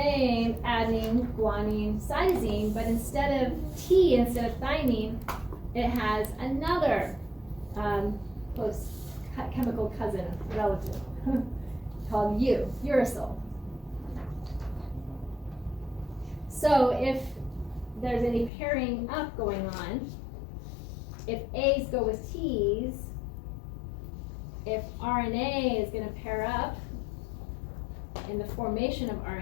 adenine, guanine, cytosine, but instead of T, instead of thymine, it has another close chemical cousin relative called uracil. So if there's any pairing up going on, if A's go with T's, if RNA is going to pair up in the formation of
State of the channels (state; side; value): drops out; right; at 18.5 s